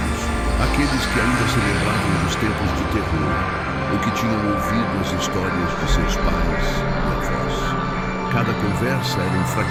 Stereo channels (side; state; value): both; identical; correlation 1.00